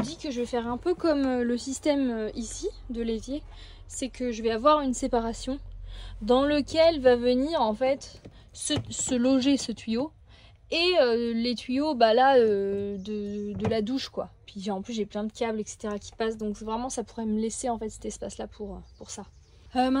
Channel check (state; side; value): identical; both; correlation 1.00